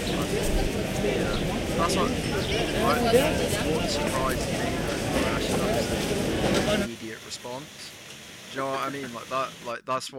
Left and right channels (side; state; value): both; identical; correlation 1.00